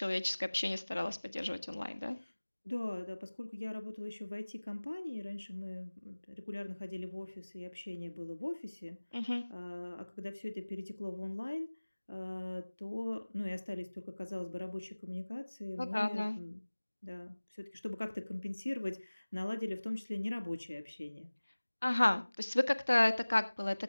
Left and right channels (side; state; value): both; inverted; correlation -1.00